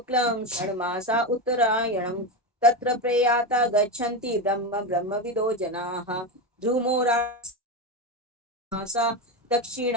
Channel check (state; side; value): normal; both; correlation 0.15